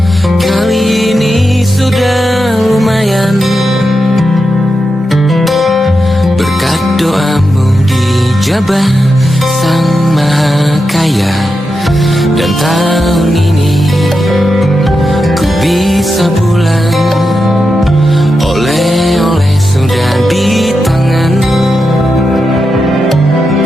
Kali ini sudah lumayan, berkat doamu dijabah Sang Maha Kaya. Dan tahun ini ku bisa pulang, oleh-oleh sudah di tangan.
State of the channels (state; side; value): normal; both; correlation 0.88